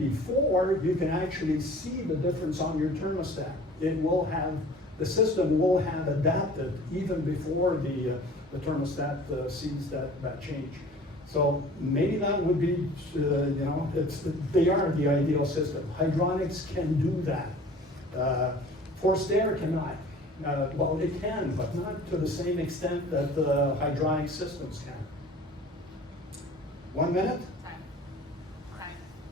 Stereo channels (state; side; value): normal; both; correlation 0.46